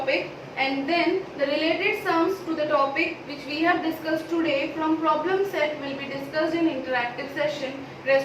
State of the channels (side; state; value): both; identical; correlation 1.00